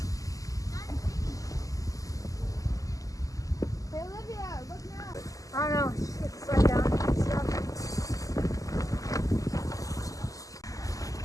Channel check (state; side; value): late; right; 0.17 ms